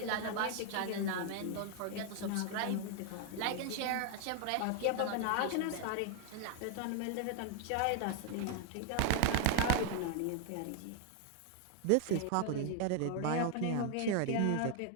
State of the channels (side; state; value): both; different; correlation 0.00